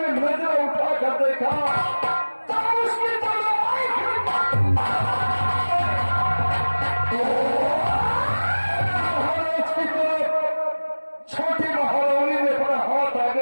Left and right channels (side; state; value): both; inverted; correlation -1.00